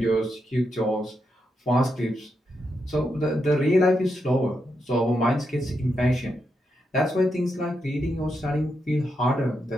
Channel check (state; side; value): normal; both; correlation 0.83